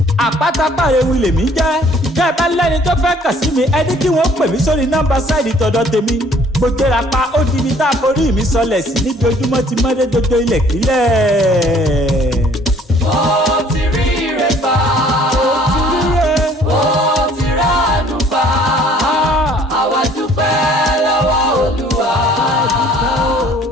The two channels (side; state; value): both; normal; correlation 0.57